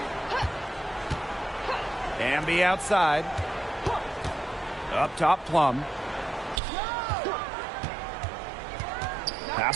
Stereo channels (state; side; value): drops out; left; at 6.6 s